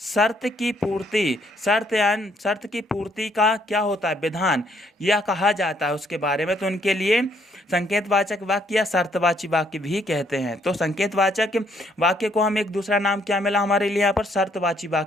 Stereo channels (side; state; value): both; normal; correlation 0.69